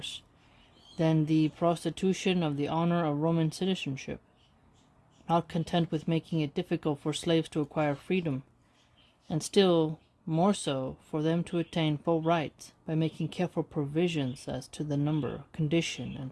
than the prostitution of the honor of Roman citizenship. Not content with making it difficult for slaves to acquire freedom, and still more so for them to attain full rights, by making careful provisions as to the number, condition, and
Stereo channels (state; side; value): identical; both; correlation 1.00